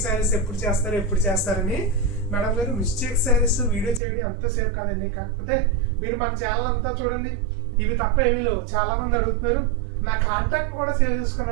శారీస్ ఎప్పుడు చేస్తారని. మేడం గారు, మిస్టేక్ శారీస్ వీడియో చేయడం అంతసేపు కాదండి, కాకపోతే మీరు మన ఛానల్ అంతా చూడండి, ఇవి తప్ప ఏమీ లేవు. చాలా మంది అడుగుతున్నారు, నా కాంటాక్ట్ కూడా సేవ్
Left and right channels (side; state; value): left; drops out; at 4.0 s